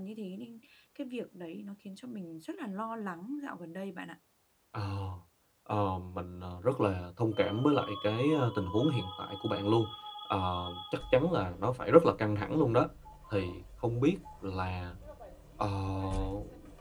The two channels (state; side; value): identical; both; correlation 1.00